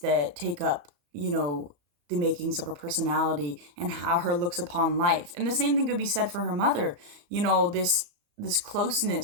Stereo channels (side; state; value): left; late; 34 ms